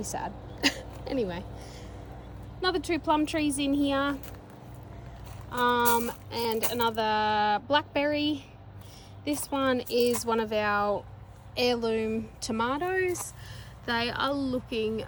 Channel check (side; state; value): both; identical; correlation 1.00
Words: sad. Anyway, another 2 plum trees in here, and another blackberry. This one is one of our heirloom tomatoes. They are looking